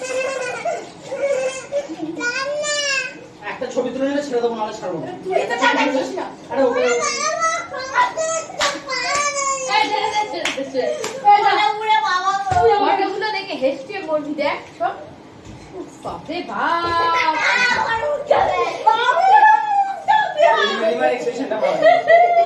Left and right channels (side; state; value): both; identical; correlation 1.00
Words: একটা ছবি তুলে নিলে ছেড়ে দেবো নাহলে ছাড়বো না তুই তো তাকাচ্ছিস না আরে ওকে এই ফটোগুলো দেখে হেসে বলবি দেখ সব বাপরে বাপ মিনিমাল এক্সপ্রেশনটা ভালো